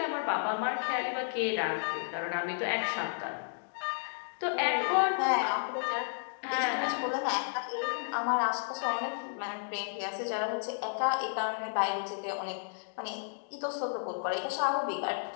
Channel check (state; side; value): silent; right; digital silence